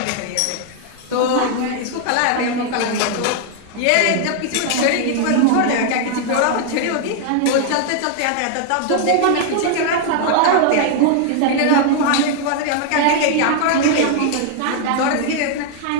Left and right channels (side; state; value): both; different; correlation 0.00